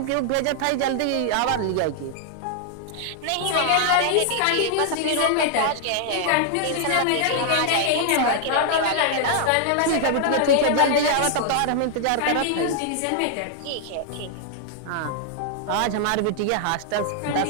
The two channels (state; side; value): different; both; correlation 0.00